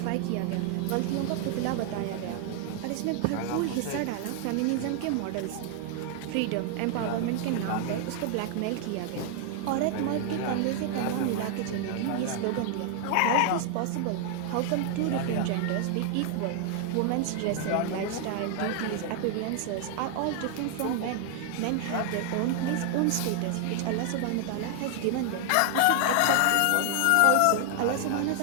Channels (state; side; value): different; both; correlation 0.00